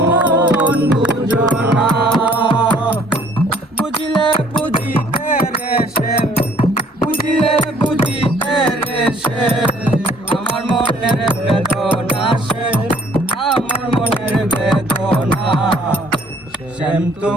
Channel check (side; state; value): both; normal; correlation 0.59